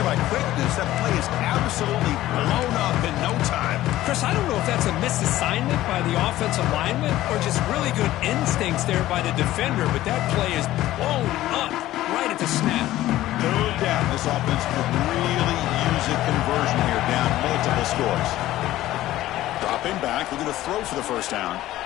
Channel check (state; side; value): quieter; right; 15.0 dB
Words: quickness. That play is absolutely blown up in no time. Chris, I don't know if that's a misassignment by the offensive lineman or just really good instincts there by the defender, but that play is blown up right at the snap. No doubt this offense could really use a conversion here, down multiple scores. Dropping back, looking to throw for the first down.